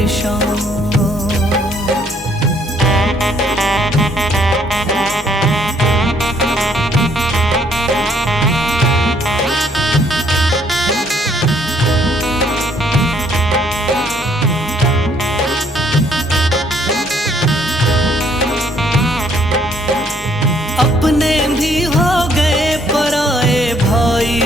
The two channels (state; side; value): normal; both; correlation 0.65